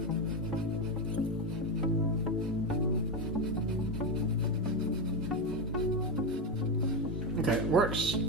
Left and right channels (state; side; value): normal; both; correlation 0.11